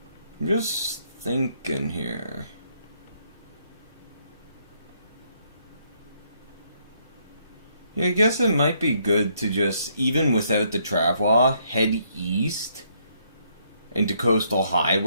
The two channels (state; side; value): inverted; both; correlation -0.71